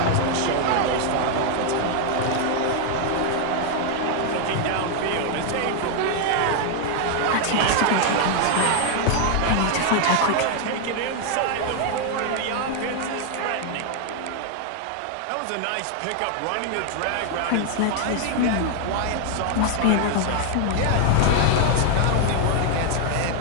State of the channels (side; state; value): both; different; correlation 0.00